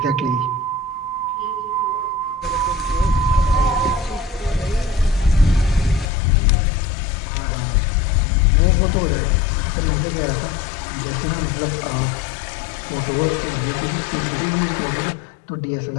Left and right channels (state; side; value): drops out; right; at 6.1 s